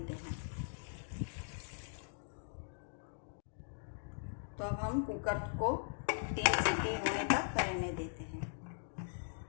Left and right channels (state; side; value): silent; right; digital silence